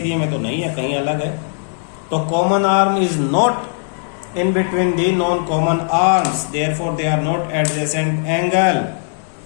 में तो नहीं है, कहीं अलग है। तो common arm is not in between the non common arms, therefore they are not adjacent angle.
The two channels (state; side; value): silent; right; 63 dB below the other